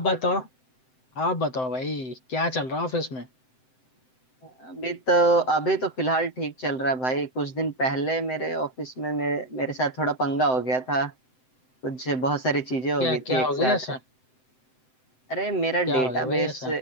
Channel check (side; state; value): right; late; 7.8 ms